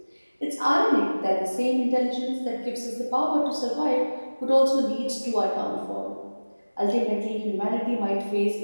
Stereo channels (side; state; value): both; inverted; correlation -1.00